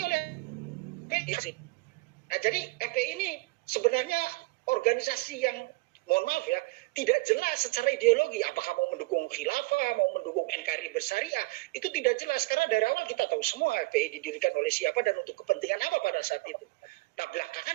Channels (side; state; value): left; quieter; 24.7 dB